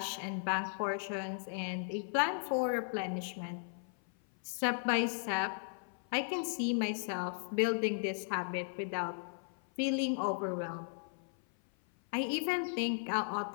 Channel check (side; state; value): right; silent; 54 dB below the other